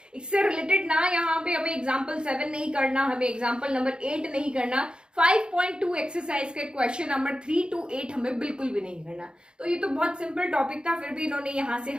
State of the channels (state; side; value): late; left; 0.050 ms